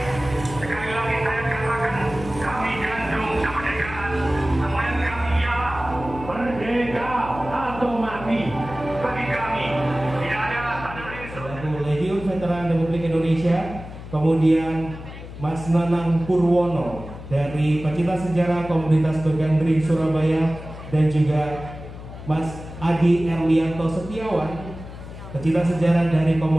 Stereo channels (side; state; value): left; noise; hum, 13 dB below the sound